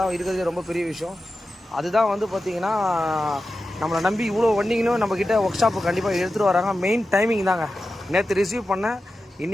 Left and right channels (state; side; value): normal; both; correlation 0.92